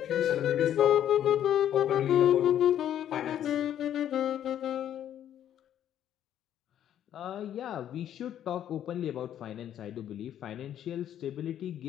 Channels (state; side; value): quieter; right; 10.6 dB